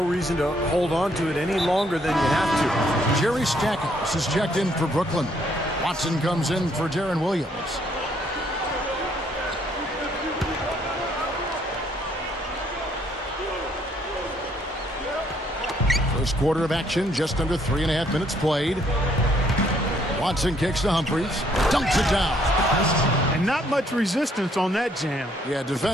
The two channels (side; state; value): both; normal; correlation 0.67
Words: reason to hold on to it any longer than you have to. Jerry Stackhouse is checked in for Brooklyn. Watson comes in for Darren Williams. First quarter of action, just under 3.5 minutes played. Watson kicks to Humphries, dunks it down. And not much resistance on that jam. Yeah,